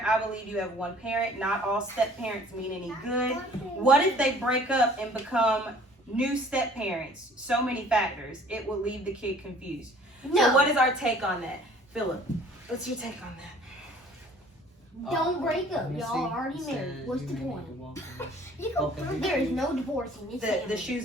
I believe you have one parent. Not all step parents mean any good. What if they break up and become new step parents? So many factors. It will leave the kid confused. No. So what is our take on that? Philip, what's your take on that? don't break up. Let me Y'all see. already It married. says What's you the may need point? to walk in There is no divorcing. It's The family.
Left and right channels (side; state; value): both; normal; correlation 0.53